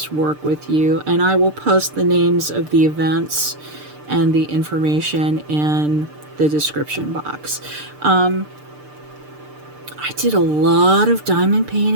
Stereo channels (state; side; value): late; left; 6.7 ms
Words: work with you, and I will post the names of the events and the information in the description box. I did a lot of diamond